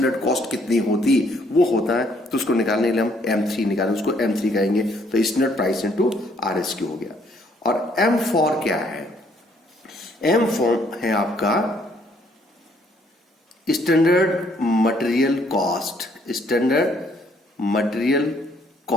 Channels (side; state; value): both; normal; correlation 0.66